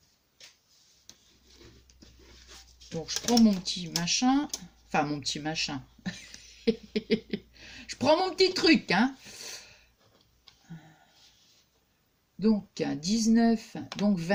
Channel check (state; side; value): identical; both; correlation 1.00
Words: Donc, je prends mon petit machin. Enfin, mon petit machin. Je prends mon petit truc, hein. Donc, 19, donc